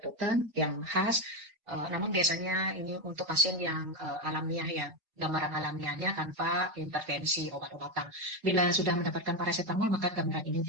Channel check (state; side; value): late; left; 4.9 ms